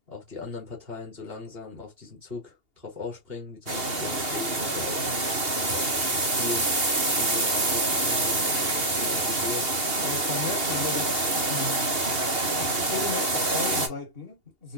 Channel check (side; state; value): left; late; 2.8 ms